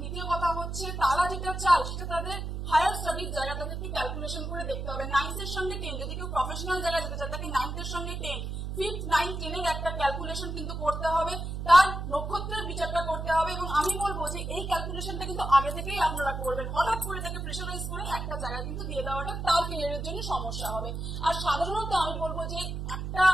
দ্বিতীয় কথা হচ্ছে তারা যেটা চায় সেটা তাদের হায়ার স্টাডির জায়গা তাদেরকে ক্যালকুলেশন করে দেখতে হবে। 9th এর সঙ্গে 10, যদি কেউ প্রফেশনাল জায়গায় যেতে চায় তাকে 9th এর সঙ্গে 10, 5th 9th 10 এর একটা ক্যালকুলেশন কিন্তু করতে হবে, তার নক্ষত্রের বিচারটা করতে হবে। এবং আমি বলবো যে এই ক্যালকুলেশনটা কিন্তু আগে থেকেই আপনারা করবেন। হঠাৎ করে তাকে প্রেশারাইজ করে একটা জায়গা কিন্তু দিয়ে দেওয়াটা তার ক্যারিয়ারের জন্য সমস্যা হবে। আর সাধারণত আমি বলবো যে একটা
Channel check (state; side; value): noise; right; hum, 5 dB below the sound